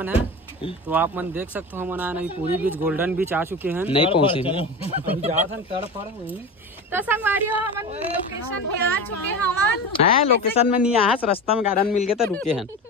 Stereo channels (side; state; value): both; normal; correlation 0.28